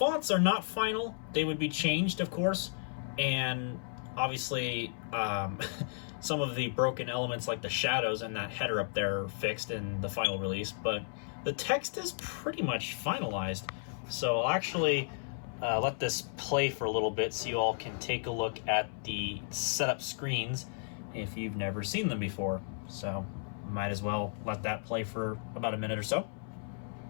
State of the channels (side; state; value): right; silent; 55 dB below the other